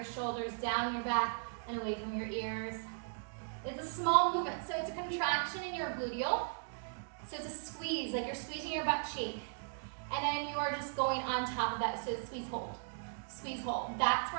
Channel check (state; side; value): silent; left; digital silence